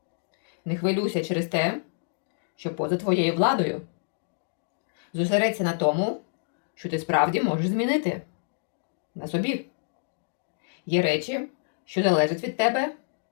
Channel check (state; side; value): silent; right; digital silence